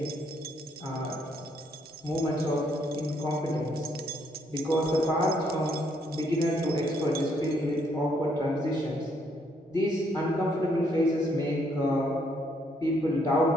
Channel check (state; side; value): normal; both; correlation 0.71